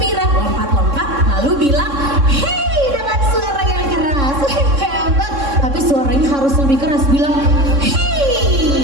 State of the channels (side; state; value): left; late; 3.6 ms